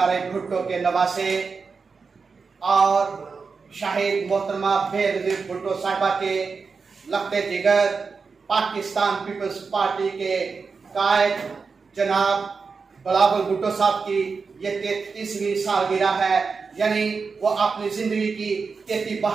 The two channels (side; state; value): left; quieter; 4.9 dB